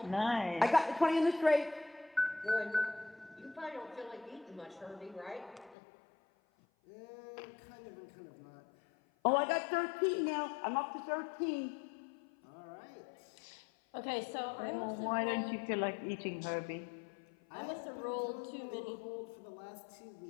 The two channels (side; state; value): right; drops out; at 5.8 s